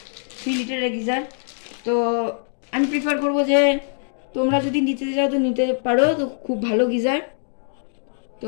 3 লিটারের গিজার। তো আমি প্রিফার করবো যে তোমরা যদি নিতে যাও তো নিতে পারো, তো খুব ভালো গিজার।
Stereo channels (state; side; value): silent; right; digital silence